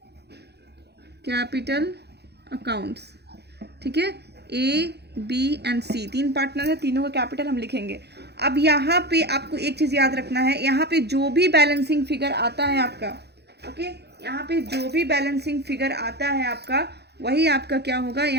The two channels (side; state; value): left; late; 0.48 ms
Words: कैपिटल अकाउंट्स, ठीक है। A B and C 3 partner है, तीनों का कैपिटल हम लिखेंगे। अब यहाँ पे आपको एक चीज याद रखना है, यहाँ पे जो भी बैलेंसिंग फिगर आता है आपका, ओके, यहाँ पे जो भी बैलेंसिंग फिगर आता है आपका वही आपका क्या होगा,